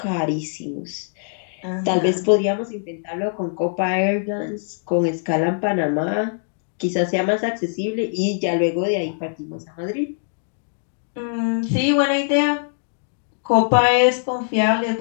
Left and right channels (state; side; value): silent; right; digital silence